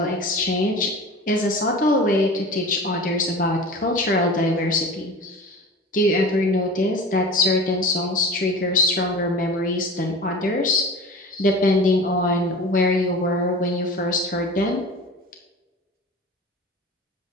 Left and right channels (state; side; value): normal; both; correlation 0.36